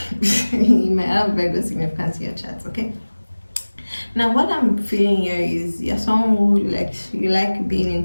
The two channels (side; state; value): both; inverted; correlation -1.00